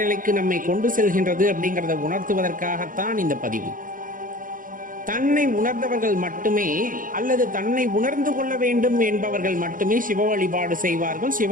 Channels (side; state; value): left; late; 0.40 ms